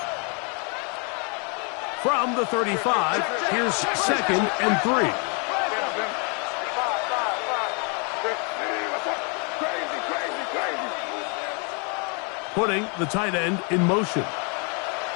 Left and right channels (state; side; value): quieter; right; 36.0 dB